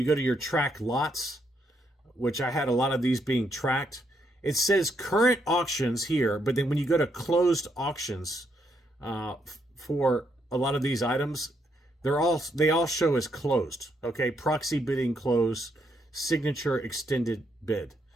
go to your track lots, which I had a lot of these being tracked, it says current auctions here, but then when you go to closed auctions for a lot of these items, they all show as closed. Okay, proxy bidding closed, signature extended bid.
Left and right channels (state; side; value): normal; both; correlation 0.76